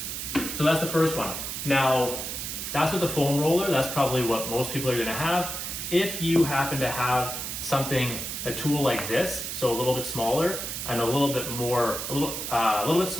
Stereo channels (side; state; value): right; noise; hiss, 5 dB below the sound